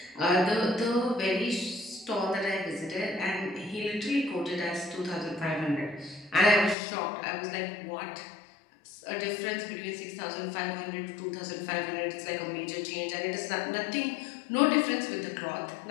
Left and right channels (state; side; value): drops out; right; at 6.8 s